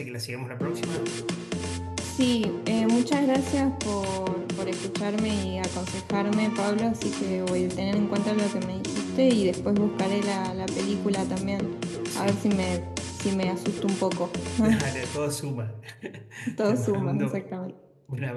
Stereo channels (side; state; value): both; identical; correlation 1.00